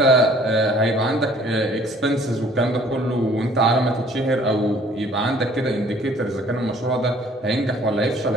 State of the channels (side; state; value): both; normal; correlation 0.56